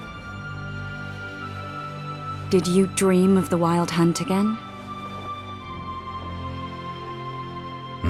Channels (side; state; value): both; identical; correlation 1.00